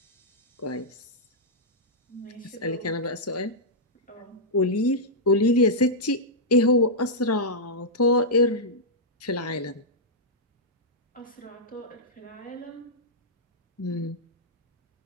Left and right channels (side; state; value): both; normal; correlation -0.09